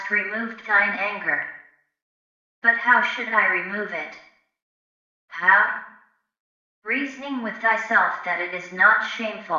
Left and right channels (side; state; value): both; identical; correlation 1.00